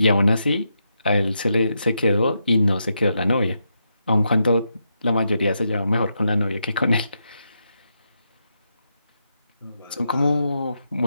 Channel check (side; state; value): both; inverted; correlation -0.84